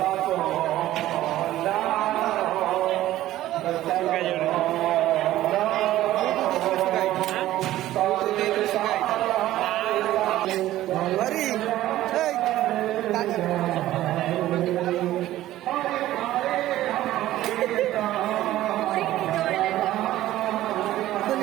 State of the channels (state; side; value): quieter; left; 14.6 dB